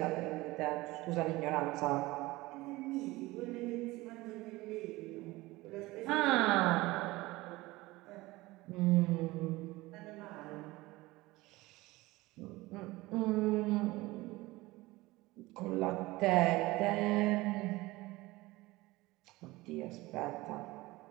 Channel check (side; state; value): left; quieter; 20.2 dB